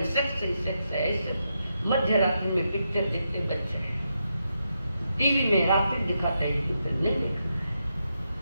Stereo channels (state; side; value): inverted; both; correlation -0.84